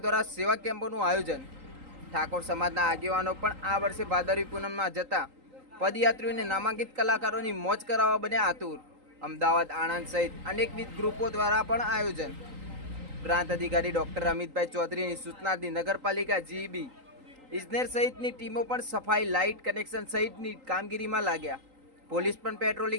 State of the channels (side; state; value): left; late; 3.8 ms